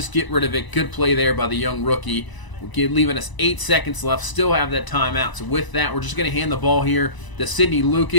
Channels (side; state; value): right; late; 1.0 ms